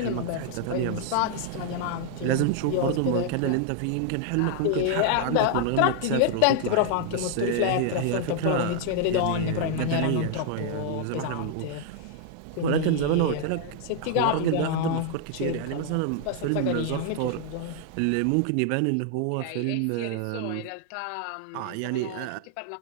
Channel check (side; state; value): both; different; correlation 0.00